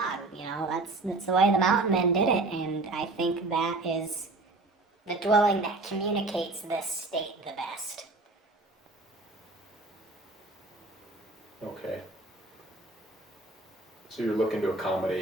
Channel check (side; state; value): left; quieter; 3.2 dB